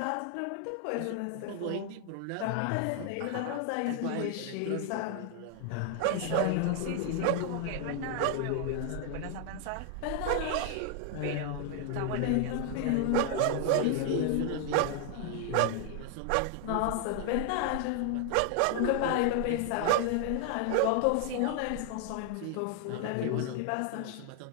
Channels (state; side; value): different; both; correlation 0.00